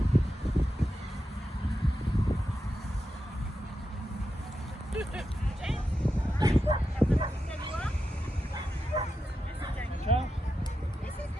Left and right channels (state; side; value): normal; both; correlation 0.89